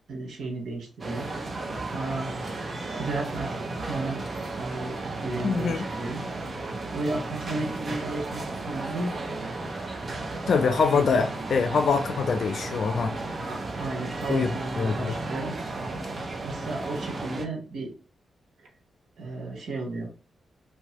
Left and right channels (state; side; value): normal; both; correlation 0.79